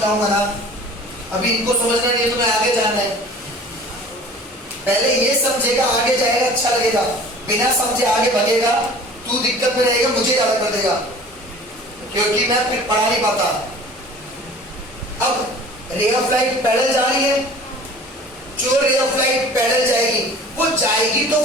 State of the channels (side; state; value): both; normal; correlation 0.45